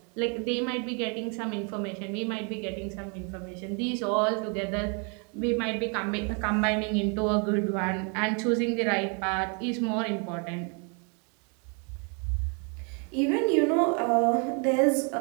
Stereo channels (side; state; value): left; quieter; 36.7 dB